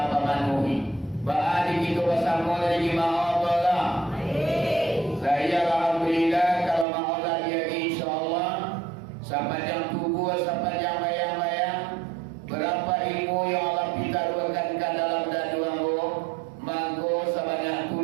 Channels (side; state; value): left; drops out; at 6.9 s